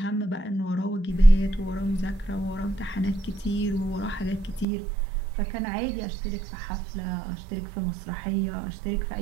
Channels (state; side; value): drops out; left; at 4.7 s